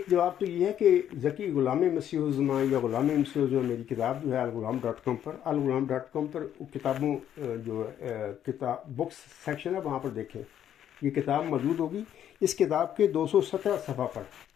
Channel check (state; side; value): quieter; right; 10.3 dB